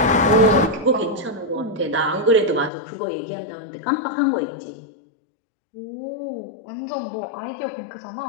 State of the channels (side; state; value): right; drops out; at 2.7 s